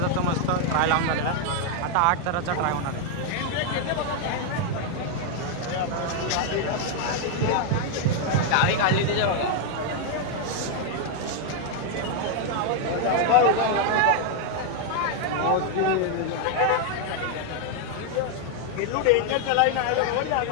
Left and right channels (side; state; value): both; different; correlation 0.00